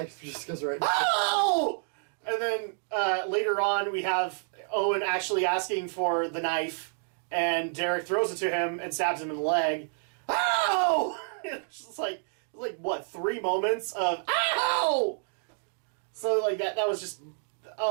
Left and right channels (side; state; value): left; silent; digital silence